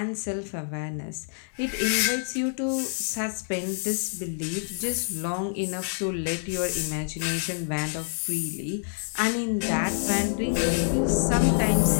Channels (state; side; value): silent; right; digital silence